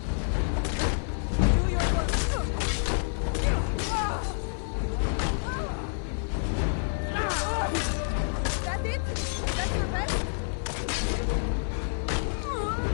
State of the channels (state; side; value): silent; right; 59 dB below the other